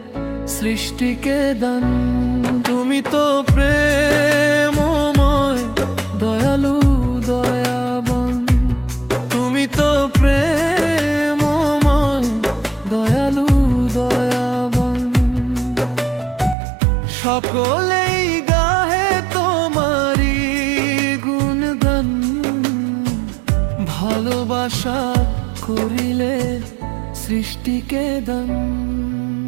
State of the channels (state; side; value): drops out; left; at 16.6 s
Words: সৃষ্টিকে দান। তুমি তো প্রেমময় দয়ালু দয়াবান, তুমি তো প্রেমময় দয়ালু দয়াবান। সকলেই গাহে তোমারি গুণগান, ভালোবাসা করিলে সৃষ্টিকে দান।